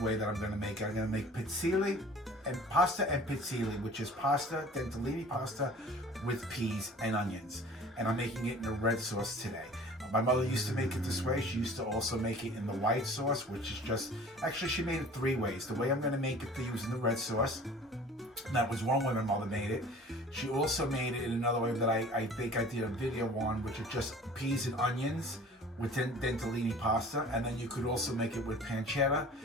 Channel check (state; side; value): normal; both; correlation 0.46